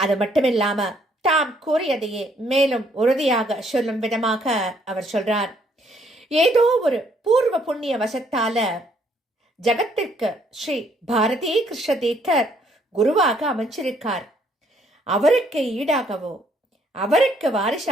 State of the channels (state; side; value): normal; both; correlation 0.67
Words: மட்டுமில்லாம தாம் கூறியதையே மேலும் உறுதியாக சொல்லும் விதமாக அவர் சொல்றார். ஏதோ ஒரு பூர்வ புண்ணிய வசத்தால ஜகத்திற்கு ஸ்ரீ பாரதி கிருஷ்ண தீர்த்தர் குருவாக அமைச்சிருக்கார். அவருக்கு ஈடாகவோ அவருக்கு